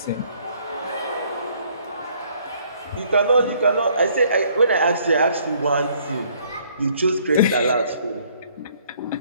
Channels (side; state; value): both; inverted; correlation -0.63